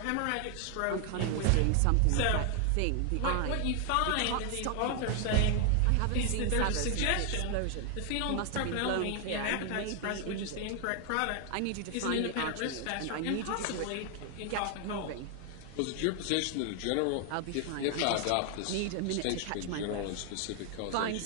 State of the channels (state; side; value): different; both; correlation 0.00